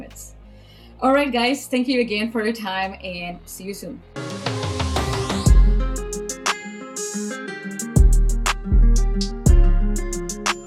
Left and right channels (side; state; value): both; identical; correlation 1.00